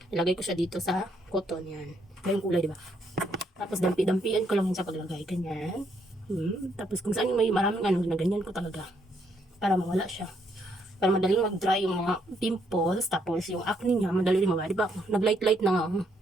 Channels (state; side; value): normal; both; correlation 0.73